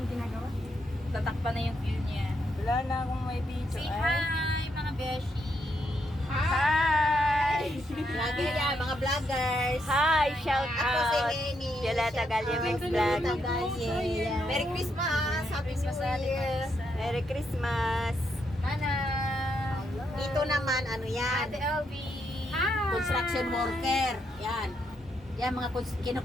ginagawa. Tatakpan na yung view niya. Wala na akong may video. Say Ay. hi, mga beshi. Hi! Vlogger yan, mga vloggers. Hi! Shout Ako si out! Lenny. Yala Tagalyemex Vlog. Tagalye. Merry Christmas. Happy New Year. Merry Christmas! Nana. Dito naman, ano yan? Ate LV. Construction worker. Yan. Yan, mga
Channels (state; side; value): normal; both; correlation 0.78